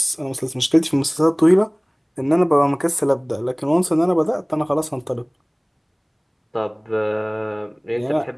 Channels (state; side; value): identical; both; correlation 1.00